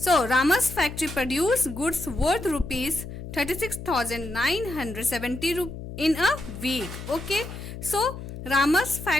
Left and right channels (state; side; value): noise; left; hum, 10 dB below the sound